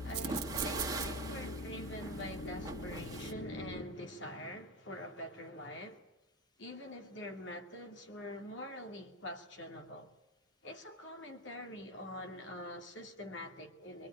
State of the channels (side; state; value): both; normal; correlation 0.21